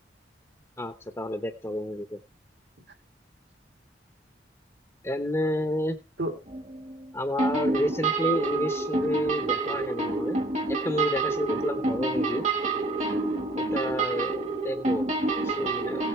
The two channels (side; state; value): both; normal; correlation 0.58